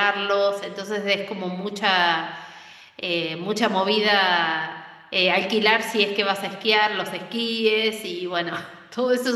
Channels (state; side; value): identical; both; correlation 1.00